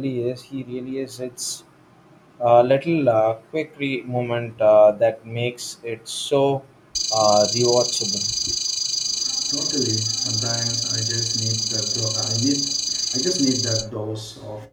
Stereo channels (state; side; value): identical; both; correlation 1.00